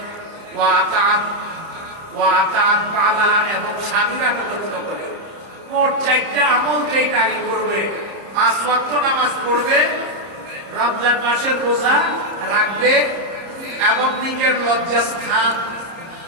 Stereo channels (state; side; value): late; left; 30 ms